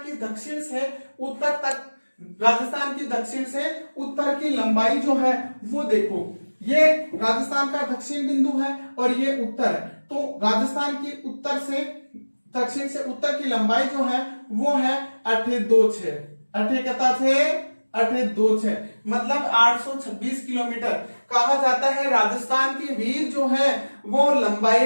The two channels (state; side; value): inverted; both; correlation -1.00